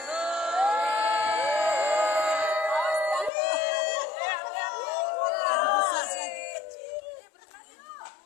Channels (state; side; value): drops out; right; at 3.3 s